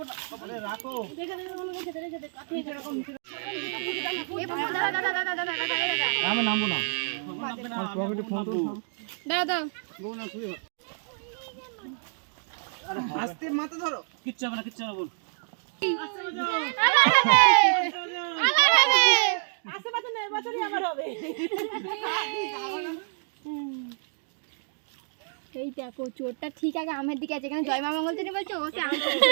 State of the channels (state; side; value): silent; left; 59 dB below the other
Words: দাও। আরে রাখো। দেখে দেখে মনে করছে, দেখে দেখে আপনি এরকম আমি নামবো না। পকেটে ফোন তো দাও দাও। বউ না শুয়ে। আরে আস্তে মাথা ধরো। কিচ্ছু হবে না, কিচ্ছু হবে না বল। আস্তে বাজাও। আমার হবে। আস্তে বাজাও না, এবছরই আমার হবে। এই দেখো চোরটা ঠিক আগে আমের দিকে আছে, এখানে জয় মা মঙ্গলচণ্ডী বলছো, ও সে আম